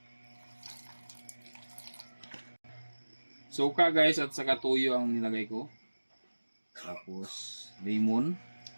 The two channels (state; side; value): inverted; both; correlation -1.00